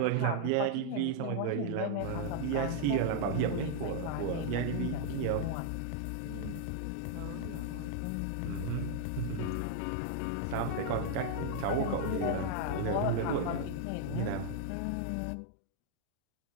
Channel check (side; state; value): both; different; correlation -0.01